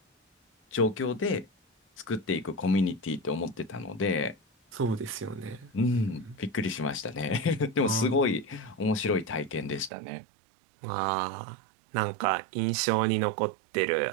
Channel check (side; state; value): left; drops out; at 9.9 s